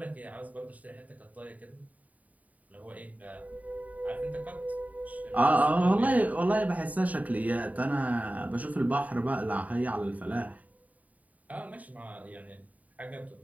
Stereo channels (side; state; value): left; late; 0.072 ms